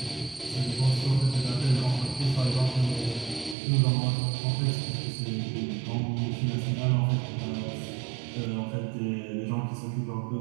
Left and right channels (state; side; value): drops out; left; at 3.6 s